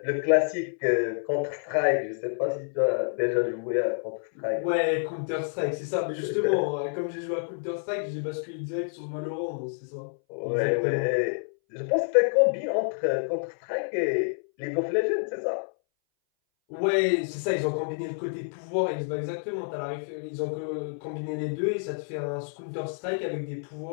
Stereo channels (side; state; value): right; silent; 59 dB below the other